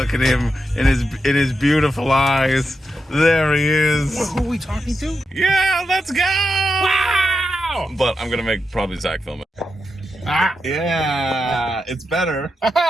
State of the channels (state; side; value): normal; both; correlation 0.87